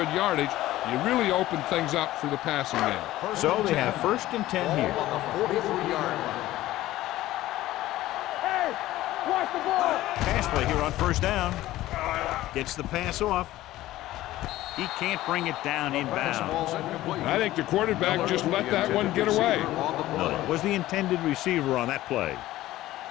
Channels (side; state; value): right; quieter; 15.7 dB